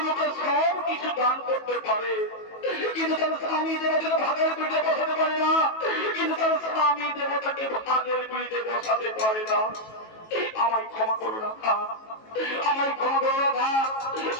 মুখে সব কিছু দান করতে পারে, কিন্তু তার স্বামী দেবতাকে ভাগের পিড়িতে বসাতে পারে না, কিন্তু তার স্বামী দেবতাকে ভাগের পিড়িতে বসাতে পারে না। আমায় ক্ষমা করো রাধা, আমায় ক্ষমা করো রাধা,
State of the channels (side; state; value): right; late; 18 ms